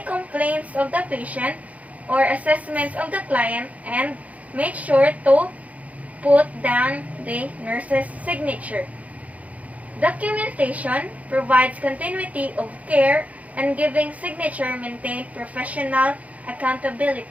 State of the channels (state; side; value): late; left; 0.070 ms